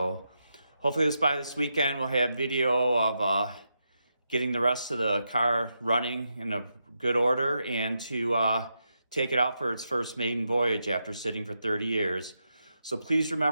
hopefully by this weekend we'll have video of getting the rest of the car running in a good order and to take it out for its first maiden voyage after sitting for 30 years. So please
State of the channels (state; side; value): inverted; both; correlation -0.85